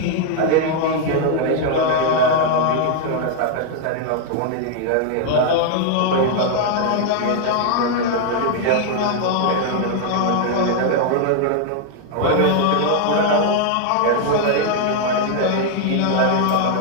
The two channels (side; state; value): both; different; correlation 0.00